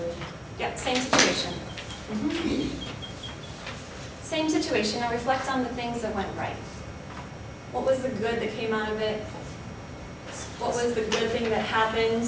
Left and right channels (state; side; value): identical; both; correlation 1.00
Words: Yeah, same situation. Same situation, now reflect on the things that went right. What was the good that came out of it? What was the good thing that